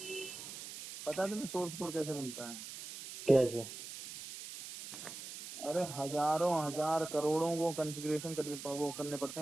पता है तुम्हें सोर्स कोड कैसे बनता है? कैसे? अरे हजारों हजार करोड़ों को कॉन्फ़िगरेशन करने पड़ते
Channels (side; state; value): right; noise; hiss, 10 dB below the sound